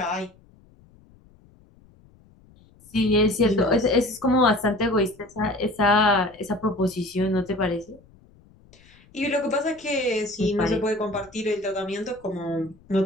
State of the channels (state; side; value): noise; left; rumble, 28 dB below the sound